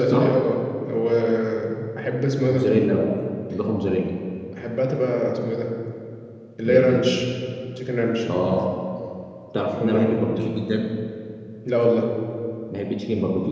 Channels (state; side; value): identical; both; correlation 1.00